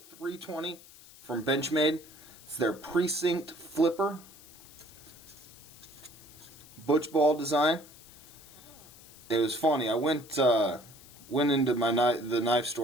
from Benchmade. It's their Precinct flipper. Butch ball design. It was funny. I went into the knife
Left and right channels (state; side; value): noise; left; hiss, 21 dB below the sound